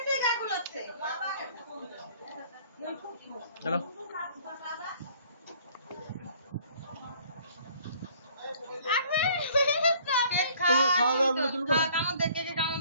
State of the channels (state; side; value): inverted; both; correlation -0.56